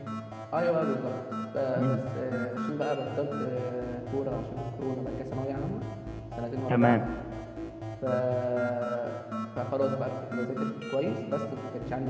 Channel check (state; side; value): identical; both; correlation 1.00